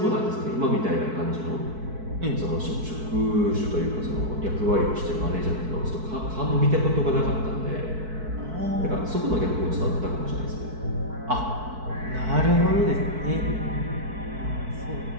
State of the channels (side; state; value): left; late; 4.6 ms